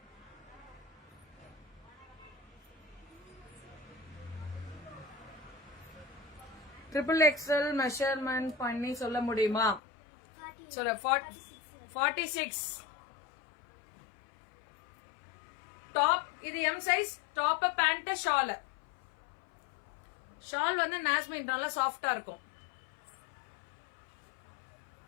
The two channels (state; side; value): drops out; right; at 9.8 s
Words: ட்ரிபிள் எக்ஸ்எல் மெஷர்மெண்ட் பண்ணி சொல்ல முடியுமா? சொல்ல 46 டாப். இது M size. Top pant shawl. Shawl வந்து நாஸ்மின் நல்லா சாஃப்டா இருக்கும்.